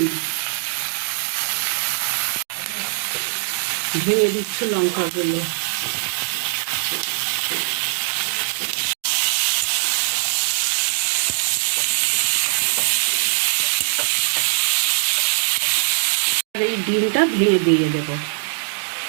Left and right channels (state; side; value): silent; left; digital silence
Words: ভেঙে দিচ্ছি লঙ্কাগুলো। আর এই ডিমটা ভেঙে দিয়ে দেবো।